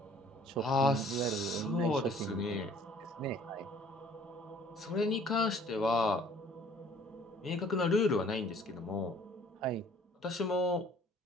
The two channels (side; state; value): both; normal; correlation 0.55